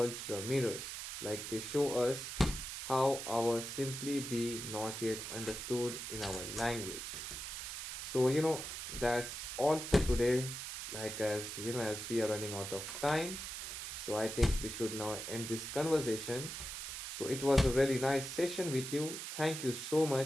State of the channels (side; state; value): right; noise; hiss, 6 dB below the sound